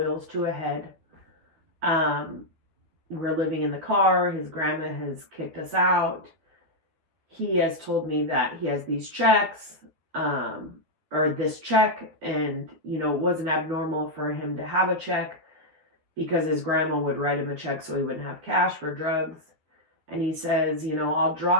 to a head. We're living in the car. His grandma has kicked us out. He has told me that he has these checks, or this check, and, it wasn't abnormal for him to have a check, because his grandma would write him a check so he wouldn't have cash for drugs. And he says, I'll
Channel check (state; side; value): late; left; 13 ms